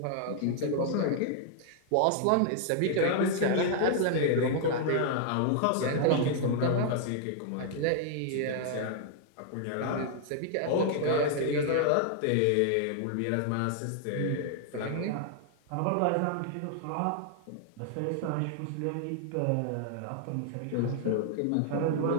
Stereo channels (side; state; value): both; different; correlation 0.00